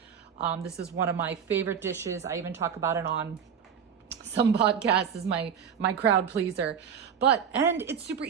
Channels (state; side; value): quieter; left; 7.5 dB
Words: This is one of my favorite dishes. I even talk about it on some podcasts as my crowd pleaser. And it's super